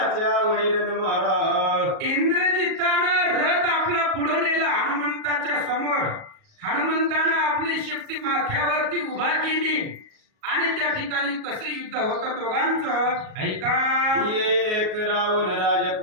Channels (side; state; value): left; late; 37 ms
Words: वडी रण मारा. इंद्रजितानं रथ आपला पुढे नेला हनुमंताच्या समोर. हनुमंतानं आपली शक्ती माथ्यावरती उभा केली आणि त्या ठिकाणी कसे युद्ध होतं दोघांचं ऐका. एक रावण